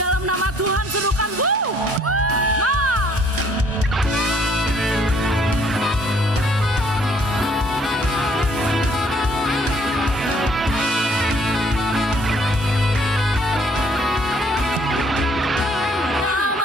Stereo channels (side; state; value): both; normal; correlation 0.63